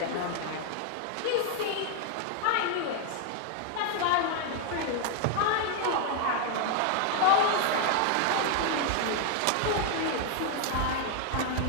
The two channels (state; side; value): different; both; correlation 0.01